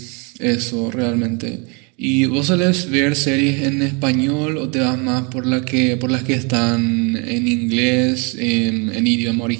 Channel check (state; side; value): quieter; left; 32.2 dB